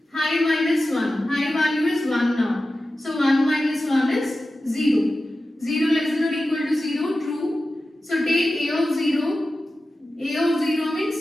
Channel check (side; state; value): both; normal; correlation 0.94